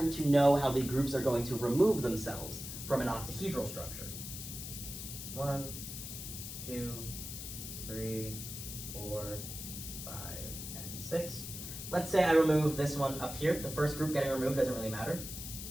to know how the groups are going to remove themselves from an octahedral structure. 1, 2, 3, 4, 5, and 6. Let's say I remove this one up here. The first group getting removed doesn't really matter.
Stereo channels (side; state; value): left; noise; hiss, 8 dB below the sound